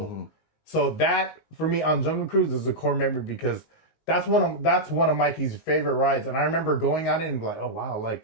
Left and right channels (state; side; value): late; right; 19 ms